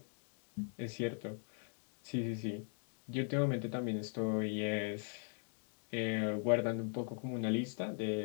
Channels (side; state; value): right; silent; 51 dB below the other